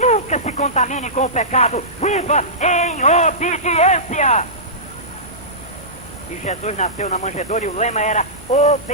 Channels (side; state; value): both; normal; correlation -0.18